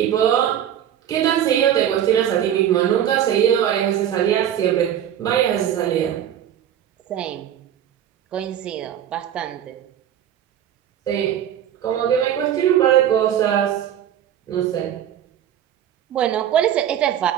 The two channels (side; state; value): left; quieter; 10.3 dB